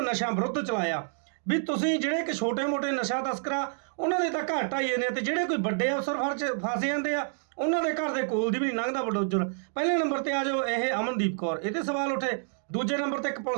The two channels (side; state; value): left; silent; digital silence